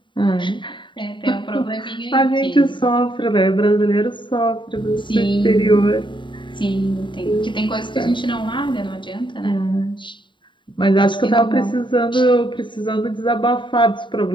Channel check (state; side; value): late; right; 0.23 ms